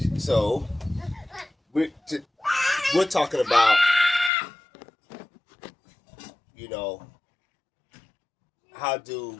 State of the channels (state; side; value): drops out; right; at 4.3 s